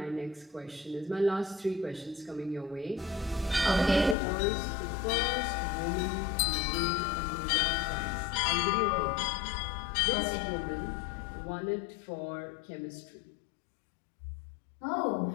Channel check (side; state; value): right; drops out; at 4.2 s